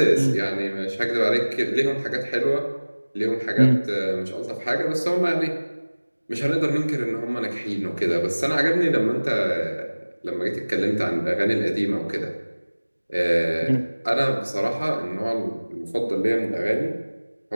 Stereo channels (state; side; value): inverted; both; correlation -1.00